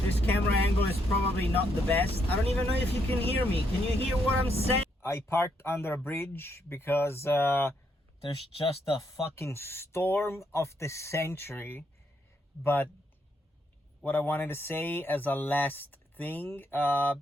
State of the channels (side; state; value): both; normal; correlation 0.76